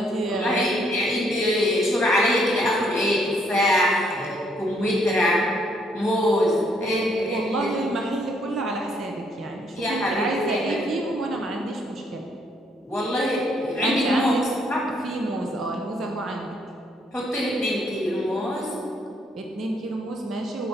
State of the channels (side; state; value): both; normal; correlation 0.70